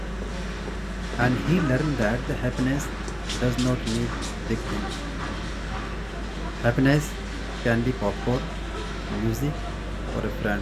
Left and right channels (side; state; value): both; identical; correlation 1.00